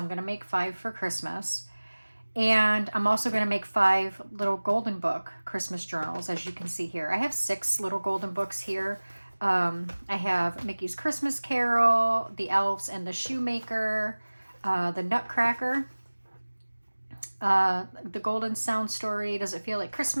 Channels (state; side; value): inverted; both; correlation -1.00